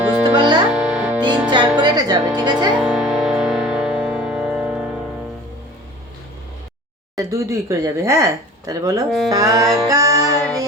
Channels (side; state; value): both; normal; correlation 0.43